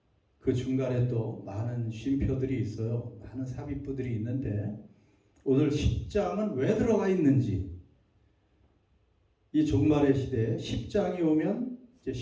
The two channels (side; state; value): both; identical; correlation 1.00